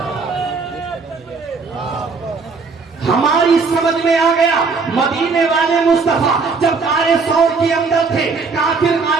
ہماری سمجھ میں آ گیا مدینے والے مصطفیٰ جب غار ثور کے اندر تھے کافر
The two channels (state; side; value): quieter; left; 4.6 dB